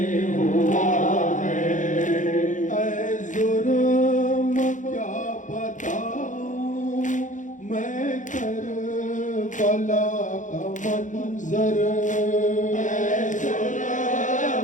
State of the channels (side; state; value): right; late; 0.37 ms